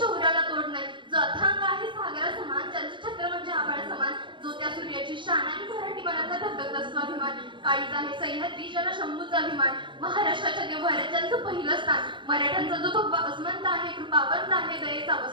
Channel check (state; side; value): late; left; 0.23 ms